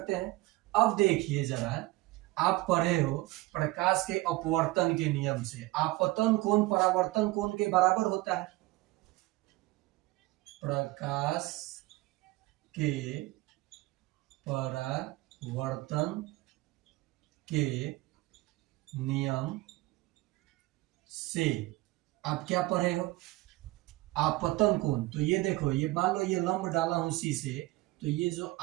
हैं। अब देखिए जरा, आप पढ़े हो प्रकाश के अपवर्तन के नियम से, आपतन कोण परावर्तन कोण के बराबर होता है। प्रकाश के परावर्तन के नियम से आप क्या पढ़े हो, आपतन कोण। तो ये देखो, ये मान लो ये लंब डाला हूं सी से, तो ये जो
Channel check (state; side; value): quieter; left; 19.8 dB